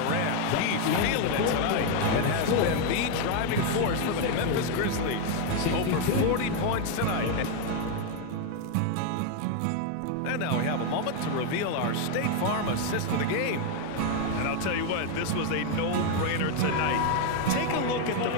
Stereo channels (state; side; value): different; both; correlation 0.01